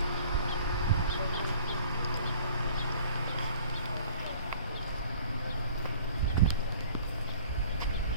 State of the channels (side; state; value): both; inverted; correlation -0.51